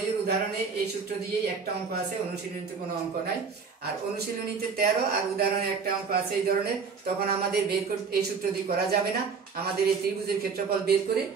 উদাহরণে এই সূত্র দিয়েই একটা অঙ্ক আছে, অনুশীলনীতে কোনো অঙ্ক নাই। আর অনুশীলনীতে 13 আর উদাহরণে একটা অঙ্ক আছে এই ধরনের, তখন আমাদের এই সূত্র দিয়ে করা যাবে না, আমাদের এই ত্রিভুজের ক্ষেত্রফল বের করে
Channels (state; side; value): quieter; left; 5.5 dB